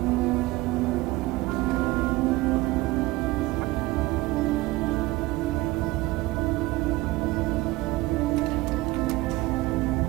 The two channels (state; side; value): quieter; left; 19.9 dB